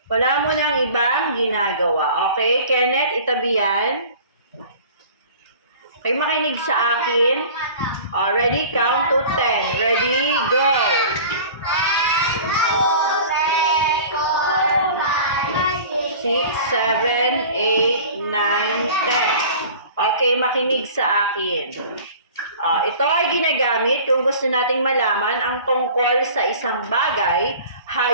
Wala mo nang ibang ginagawa. Okay? Kenneth, itabi yan. Okay, makinig sa akin. Ready? Count to 10. Ready? Go! 6, 7, 8, 9, 10. Okay, makinig sa akin. Ito ay ginagamit kung gusto nating malaman ang tungkol sa isang bagay,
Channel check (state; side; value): inverted; both; correlation -0.43